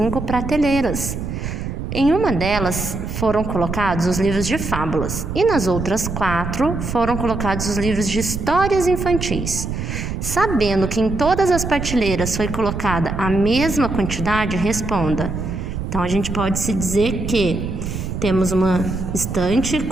prateleiras. Em uma delas foram colocados os livros de fábulas e nas outras 4 foram colocados os livros de histórias infantis. Sabendo que em todas as prateleiras foi colocada a mesma quantidade, responda. Então, a gente pode se dizer que temos uma estante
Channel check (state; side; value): noise; right; rumble, 5 dB below the sound